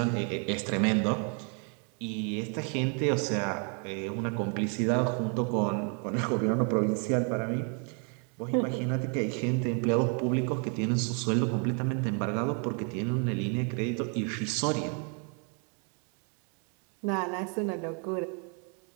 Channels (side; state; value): left; quieter; 39.7 dB